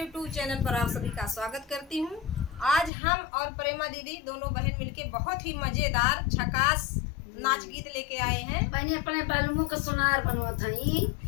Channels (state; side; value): drops out; right; at 2.9 s